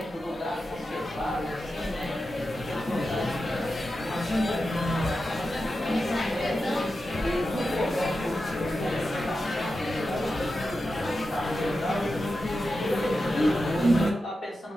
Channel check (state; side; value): normal; both; correlation 0.91